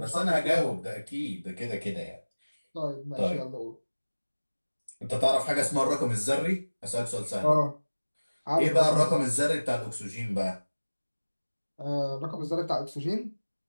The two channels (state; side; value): inverted; both; correlation -1.00